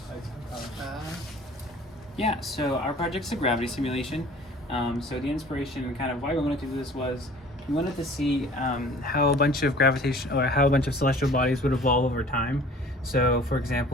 Yeah, so our project's a gravity simulation. So the inspiration and kind of why we wanted to do this was we wanted to see how a bunch of celestial bodies would evolve over time. So for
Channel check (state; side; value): normal; both; correlation 0.48